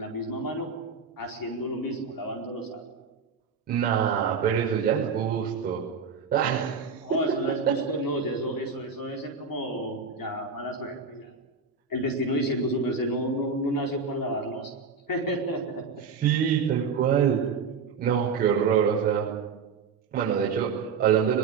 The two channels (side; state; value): left; quieter; 5.4 dB